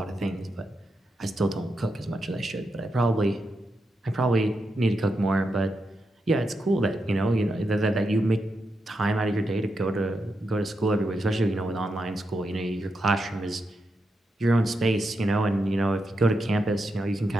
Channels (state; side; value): normal; both; correlation 0.85